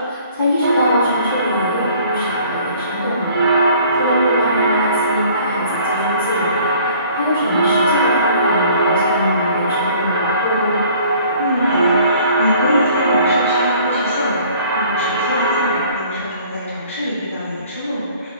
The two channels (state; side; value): inverted; both; correlation -0.54